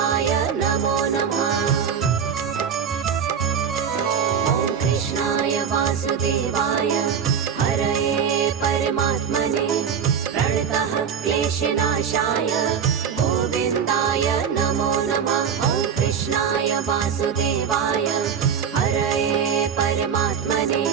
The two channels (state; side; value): quieter; left; 7.4 dB